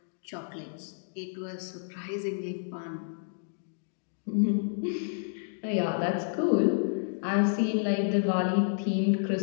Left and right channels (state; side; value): silent; right; digital silence